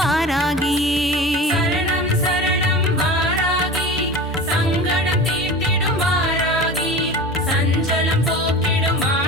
சரணம் சரணம் வாராகி சங்கடம் தீர்த்திடும் வாராகி சஞ்சலம் போக்கிடும்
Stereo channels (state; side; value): normal; both; correlation 0.34